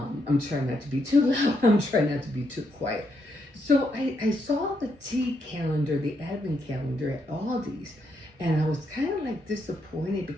trying not to be too loud. I'm trying not to be too quiet. So I saw the tea calendar, the advent calendar at Aldi's, and I was kind of like disappointed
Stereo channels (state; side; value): late; left; 1.1 ms